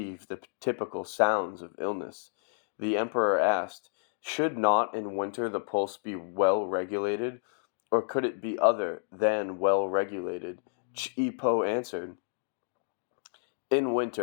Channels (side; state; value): right; silent; digital silence